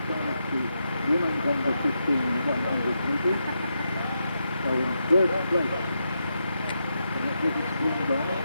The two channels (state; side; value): inverted; both; correlation -0.84